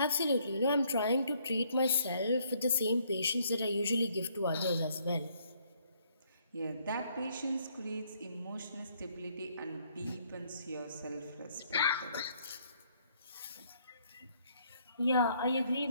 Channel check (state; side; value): inverted; both; correlation -0.68